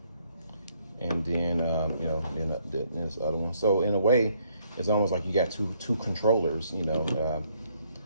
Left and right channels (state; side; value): inverted; both; correlation -0.69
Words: and then then this other one. So in a way, it's almost like you got two controllers,